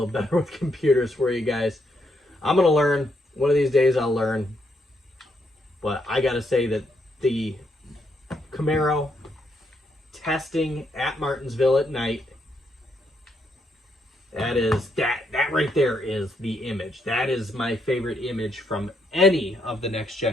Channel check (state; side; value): normal; both; correlation 0.77